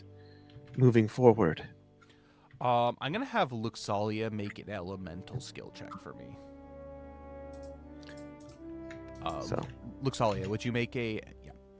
moving forward. I'm going to have Luxalia make an elemental skill check for me. Luxalia, would you make a... Yeah,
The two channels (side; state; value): both; identical; correlation 1.00